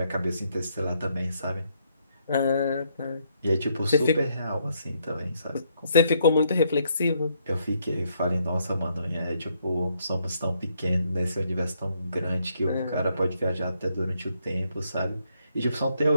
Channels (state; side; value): inverted; both; correlation -0.73